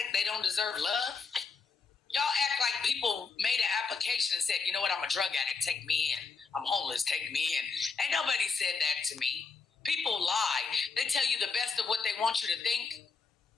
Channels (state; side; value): quieter; right; 4.9 dB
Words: they don't deserve love? Y'all act like people made an application and said, you know what, I'm a drug addict, take me in. I'm homeless, take me in. Ain't nobody said that to me. People lie. They tell you the best of what they want you to think.